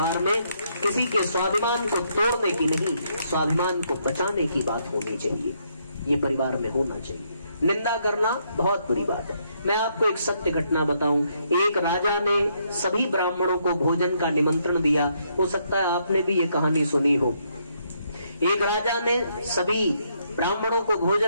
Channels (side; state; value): both; inverted; correlation -0.74